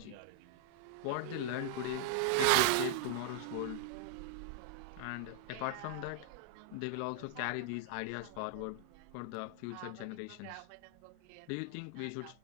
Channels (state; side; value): different; both; correlation -0.01